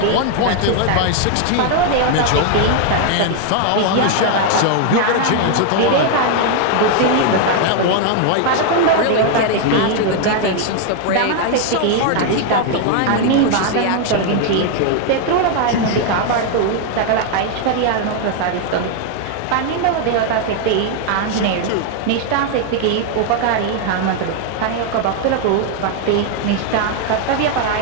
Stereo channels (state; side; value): different; both; correlation 0.01